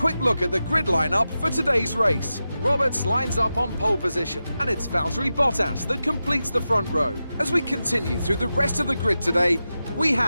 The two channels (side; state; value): both; inverted; correlation -0.92